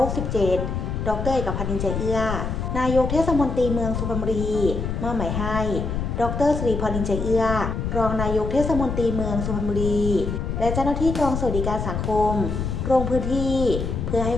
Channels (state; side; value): noise; left; rumble, 3 dB below the sound